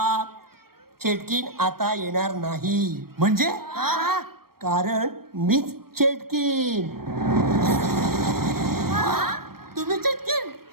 चेटकीन आता येणार नाही. म्हणजे कारण मीच चेटकीन. तुम्ही चिटकीन?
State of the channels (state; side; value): late; left; 0.94 ms